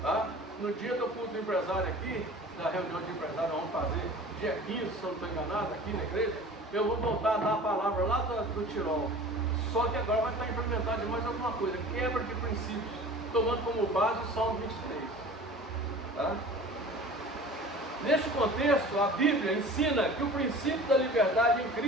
Tá? No dia do culto do empresário aqui, da reunião de empresário, vamos fazer dia 15, se eu não estou enganado, aqui na igreja, eu vou voltar a dar a palavra lá do Tirol. Só que agora vai estar implementado de mais alguma coisa, quebra de princípios, tomando como base o Salmo 23. Tá? Neste contexto, a Bíblia ensina que o princípio da liberdade em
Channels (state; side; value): normal; both; correlation 0.41